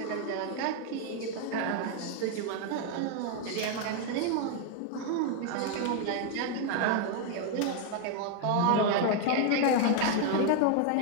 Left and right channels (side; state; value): both; different; correlation 0.00